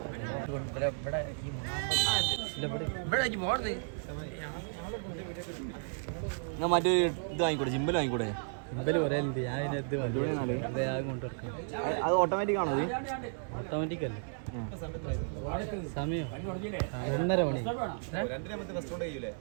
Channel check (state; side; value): silent; left; 55 dB below the other